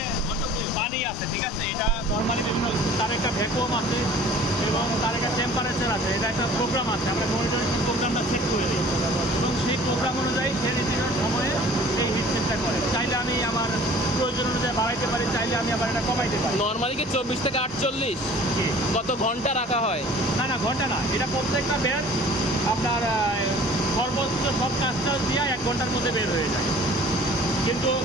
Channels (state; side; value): normal; both; correlation 0.49